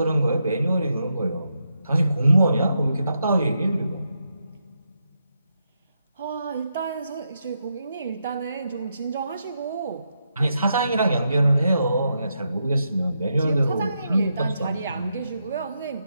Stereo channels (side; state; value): both; inverted; correlation -0.83